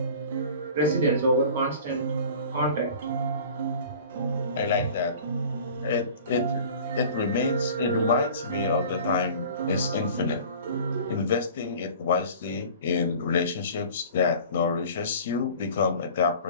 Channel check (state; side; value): inverted; both; correlation -0.44